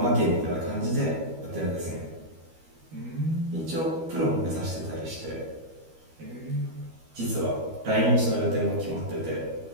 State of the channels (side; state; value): left; late; 13 ms